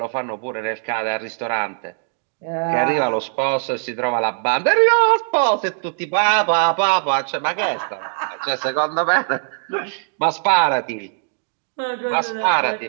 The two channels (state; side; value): silent; left; digital silence